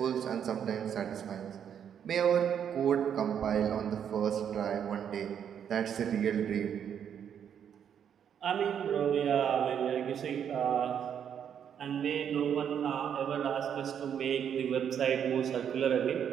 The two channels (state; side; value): quieter; left; 8.5 dB